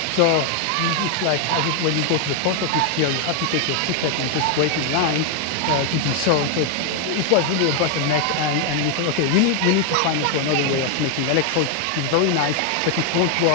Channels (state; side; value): different; both; correlation 0.00